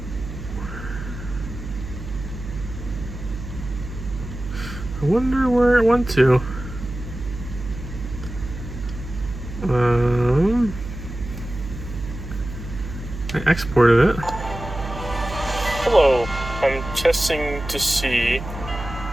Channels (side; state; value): right; noise; hum, 9 dB below the sound